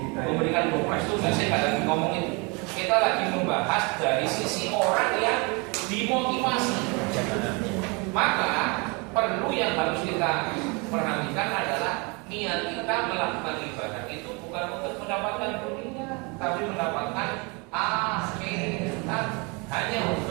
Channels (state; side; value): quieter; left; 29.9 dB